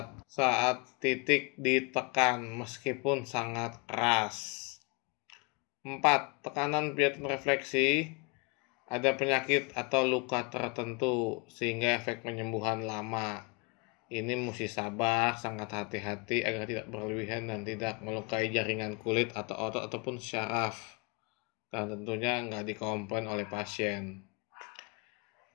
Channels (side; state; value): right; quieter; 28.3 dB